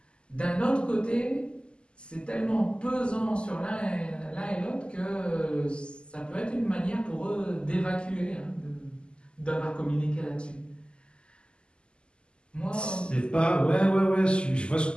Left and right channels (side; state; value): right; late; 0.050 ms